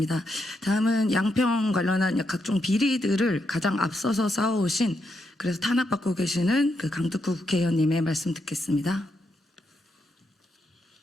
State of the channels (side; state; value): both; normal; correlation 0.81